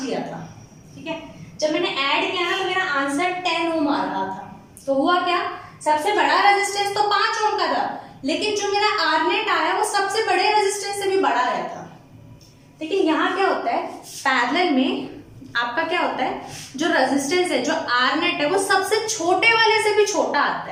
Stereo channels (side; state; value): both; identical; correlation 1.00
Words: लिया था, ठीक है, जब मैंने ऐड किया ना तो मेरा आंसर 10 ओम आ रहा था। तो हुआ क्या, सबसे बड़ा रेजिस्टेंस तो 5 ओम का था, लेकिन जो मेरा R नेट आया वो सबसे बड़े रेजिस्टेंस से भी बड़ा आया था। लेकिन यहाँ क्या होता है, पैरेलल में आपका क्या होता है, जो रेजिस्टेंस है, जो R नेट है, वो सबसे छोटे वाले से भी छोटा आता